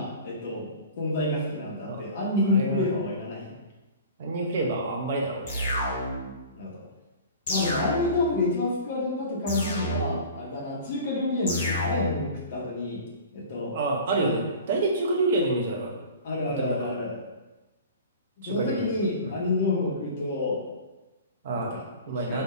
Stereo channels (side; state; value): both; inverted; correlation -0.40